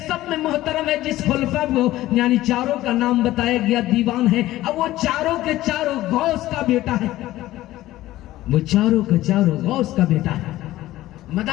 سب میں محترم ہے. جس خلفاء کو یعنی 4 کا نام بتایا گیا دیوان ہے. اب وہ 4 کے 4 غوث کا بیٹا ہے, وہ 4 کے 4 غوث کا بیٹا ہے.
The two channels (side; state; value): right; quieter; 15.7 dB